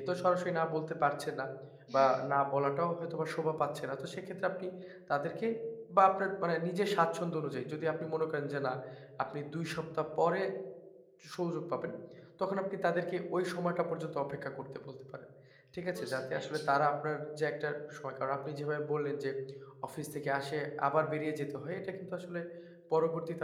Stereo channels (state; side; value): identical; both; correlation 1.00